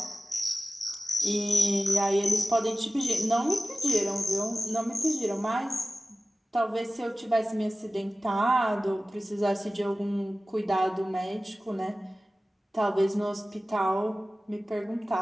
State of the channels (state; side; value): normal; both; correlation 0.96